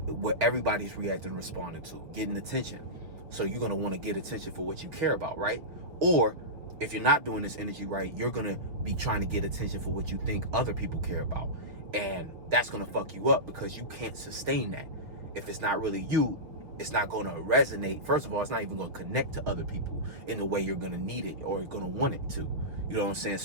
everybody's reacting and responding to, getting attention. So you're going to want to get attention for what you care about, right? Or if you're not doing this energy right, you're going to be trying to get attention for what you think other people care about. And that's going to fuck you up because you can't sustain that. If it's not really you, it's not going to resonate. First of all, it's not even going to connect to other people in the way you're going to need it or going to want it to. You know what I'm saying?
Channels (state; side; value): late; left; 6.1 ms